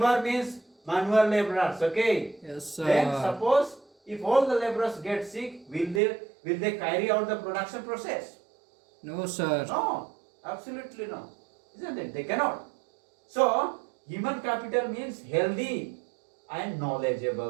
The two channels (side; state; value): left; drops out; at 6.0 s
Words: means manual laborers. Okay. Yes, sir. Then suppose if all the laborers get sick, will they carry out the production process? No, sir. No, absolutely no. Isn't it? They cannot. So human capital means healthy and